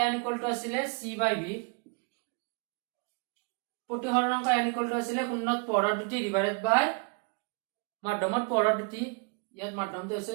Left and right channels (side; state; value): left; quieter; 34.4 dB